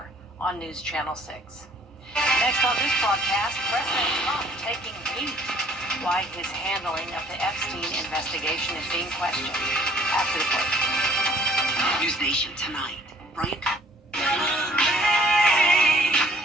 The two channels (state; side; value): normal; both; correlation 0.57